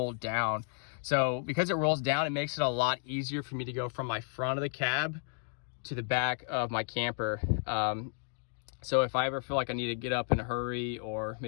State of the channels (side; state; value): right; silent; 56 dB below the other